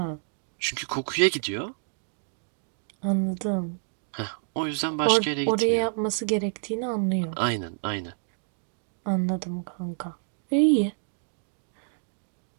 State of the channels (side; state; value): left; silent; digital silence